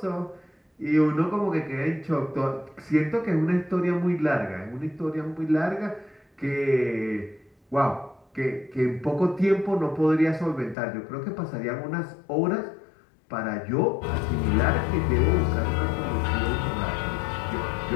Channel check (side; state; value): right; drops out; at 10.8 s